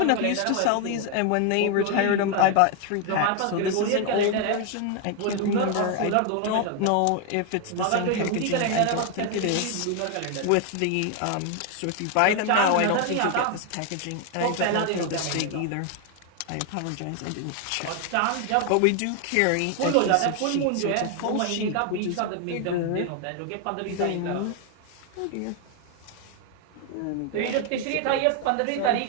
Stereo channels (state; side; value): different; both; correlation 0.01